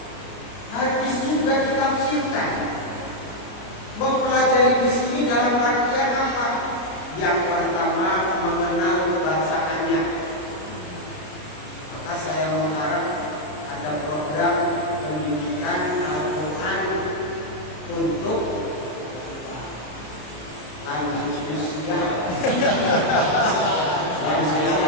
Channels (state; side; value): late; right; 33 ms